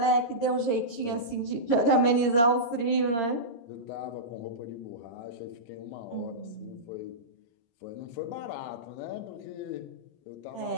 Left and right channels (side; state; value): right; late; 13 ms